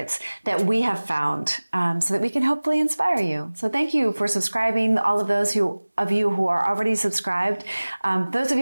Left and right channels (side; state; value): both; inverted; correlation -1.00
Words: that we have found, so that we can hopefully inspire you. So thank you for subscribing. All of those of you who are already subscribed. Those of